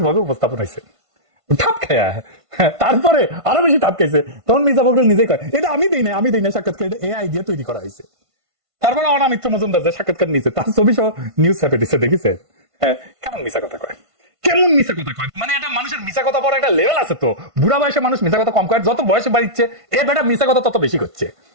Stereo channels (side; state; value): left; late; 1.5 ms